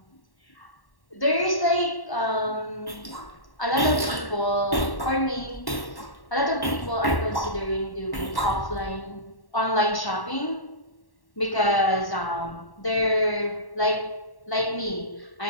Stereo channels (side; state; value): right; late; 1.1 ms